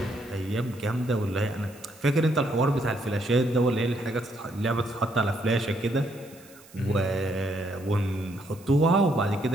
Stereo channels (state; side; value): noise; right; hiss, 24 dB below the sound